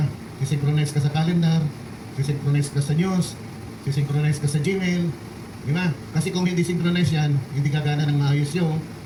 Isi-synchronize ka sa calendar, isi-synchronize ka sa news, isi-synchronize ka sa Gmail, di ba? Kasi kung hindi synchronize yan, hindi gagana ng maayos yung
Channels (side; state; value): both; identical; correlation 1.00